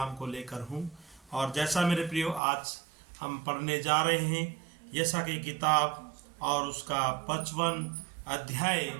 को लेकर हूं। और जैसा मेरे प्रियो आज हम पढ़ने जा रहे हैं यशा की किताब और उसका 55 अध्याय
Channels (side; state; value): left; drops out; at 2.4 s